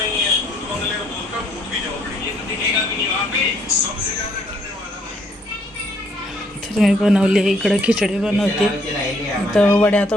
मी बनवली इकडं खिचडी बनवते. इथं वड्या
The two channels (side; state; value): both; normal; correlation 0.67